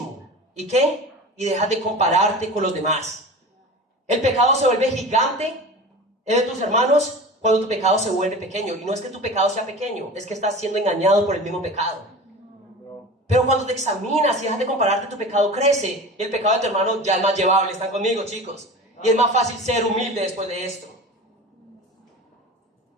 ¿Y qué? Y dejas de compararte con los demás. El pecado se vuelve gigante de tus hermanos cuando tu pecado se vuelve pequeño. Y no es que tu pecado sea pequeño, es que estás siendo engañado por el mismo pecado. Pero cuando te examinas y dejas de compararte, tu pecado crece. Y el pecado de tu hermano ya es más llevable. ¿Están conmigo, chicos? Y es más fácil ser humilde después de esto.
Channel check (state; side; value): normal; both; correlation 0.34